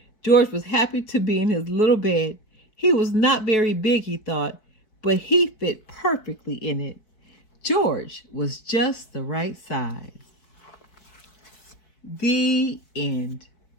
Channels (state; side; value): late; right; 4.5 ms